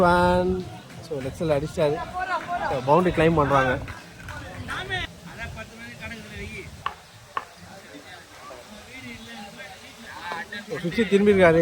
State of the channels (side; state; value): both; identical; correlation 1.00